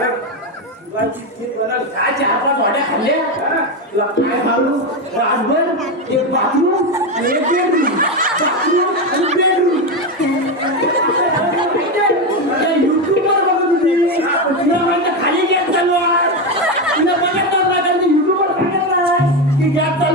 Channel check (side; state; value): both; normal; correlation 0.13